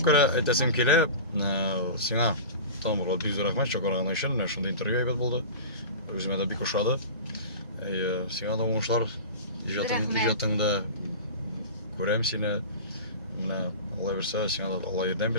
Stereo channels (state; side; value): inverted; both; correlation -0.32